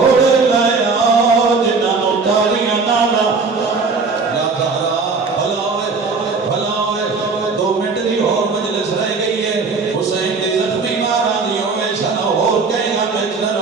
لائے آؤ جنہاں نو تالیاں نالا یا دارا بھلا ہوئے 2 منٹ دی اور مجلس رہ گئی ہے حسین دی زخمی مارا دی ہوئے شاہ اور کہیں گا مجلر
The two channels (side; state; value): left; quieter; 4.4 dB